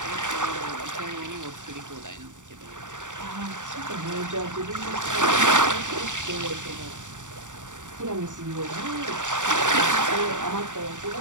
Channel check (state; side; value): late; left; 0.86 ms